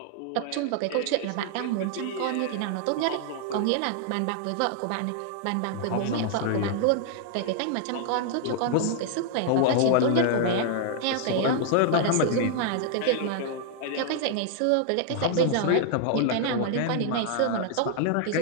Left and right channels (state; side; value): different; both; correlation 0.00